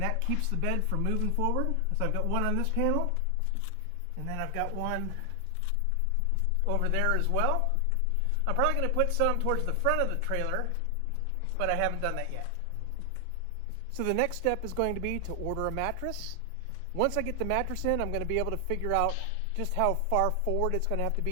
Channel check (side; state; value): both; different; correlation 0.00